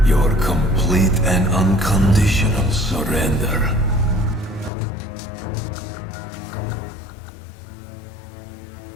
your complete and unconditional surrender.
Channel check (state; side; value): drops out; right; at 4.7 s